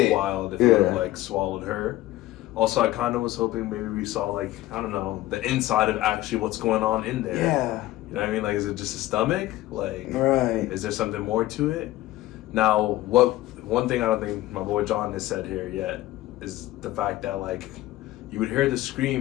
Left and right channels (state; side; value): quieter; right; 16.3 dB